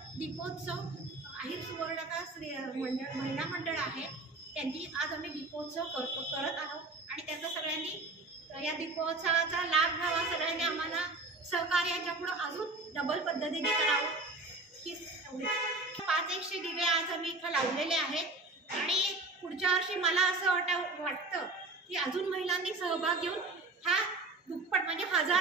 दीपोत्सव अहिर सुवर्णकार महिला मंडळ आहे त्यांनी आज आम्ही दीपोत्सव करत आहोत. आणि त्याचा सगळ्यांनी या दीपोत्सवाचा लाभ घ्यावा. सगळ्यांनी आम्हाला सहकार्याच्या पुढं अजून डबल पद्धतीने करावं की 500 दिवे आज आम्ही इथं लावलेले आहेत. आणि पुढच्या वर्षी मला असं वाटतं की अजून महिलांनी सहभाग घेऊन हा दुप्पट म्हणजे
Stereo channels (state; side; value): quieter; left; 3.2 dB